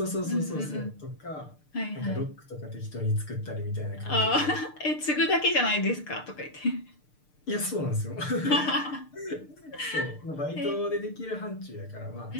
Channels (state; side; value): late; right; 6.7 ms